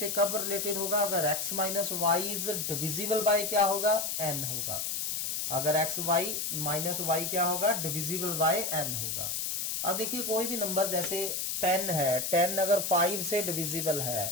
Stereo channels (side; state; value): left; noise; hiss, 1 dB below the sound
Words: कब रिलेटेड होगा? अगर x minus Y is divisible by क्या होगा, n होगा। अगर x y माइनस वाई क्या होगा, डिविजिबल बाय n होगा। अब देखिए कोई भी नंबर जैसे 10 है, 10 अगर 5 से डिविजिबल